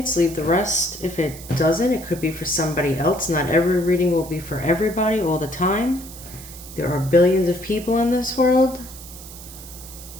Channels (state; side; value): noise; right; hiss, 15 dB below the sound